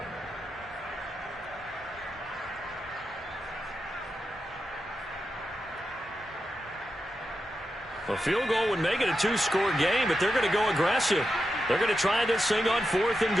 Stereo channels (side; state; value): both; normal; correlation 0.88